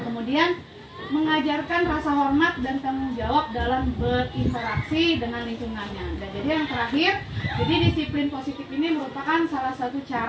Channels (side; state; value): both; identical; correlation 1.00